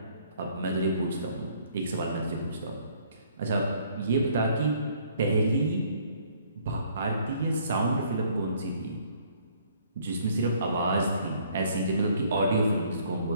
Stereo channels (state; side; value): inverted; both; correlation -0.62